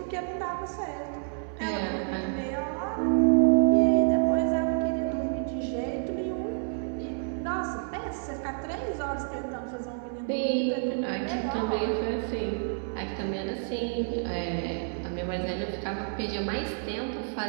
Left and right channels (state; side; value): silent; left; 59 dB below the other